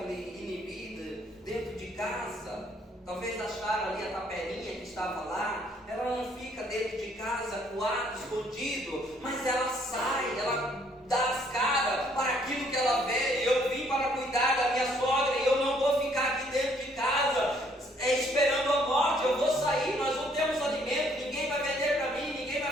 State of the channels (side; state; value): both; normal; correlation 0.65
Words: inibida dentro de casa. Talvez acharam ali a tapelinha que estava lá. Ela não fica dentro de casa, coado, escondido, mas ela sai, ela dá as caras para aquilo que ela vê. Eu vim para cuidar da minha sogra e eu não vou ficar aqui dentro de casa esperando a morte. Eu vou sair, nós não temos alimento, ninguém vai vender para mim, ninguém